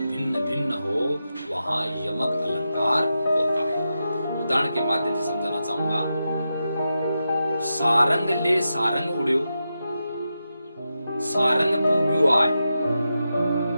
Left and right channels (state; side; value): inverted; both; correlation -0.89